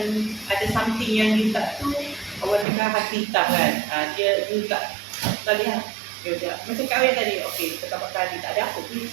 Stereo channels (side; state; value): left; drops out; at 2.7 s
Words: ada something yang you tak tu, orang cakap hati hitam kan. You tak lihat. Macam kahwin tadi, okey, kita makan tadi, tak ada apa pun